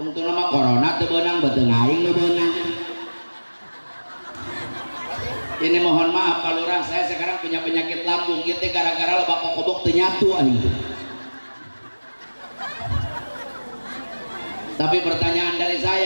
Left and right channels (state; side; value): inverted; both; correlation -1.00